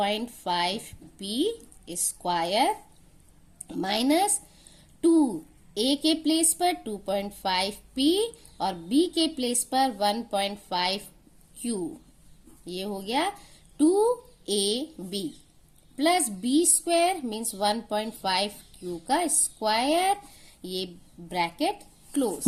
square minus 2 A के प्लेस पर 2.5p और बी के प्लेस पर 1.5q, ये हो गया 2ab plus B square means 1.5q का स्क्वायर, ये ब्रैकेट क्लोज।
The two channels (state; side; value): identical; both; correlation 1.00